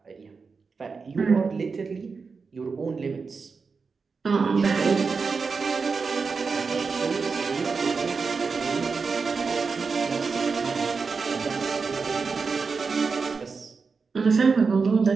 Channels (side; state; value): left; quieter; 4.9 dB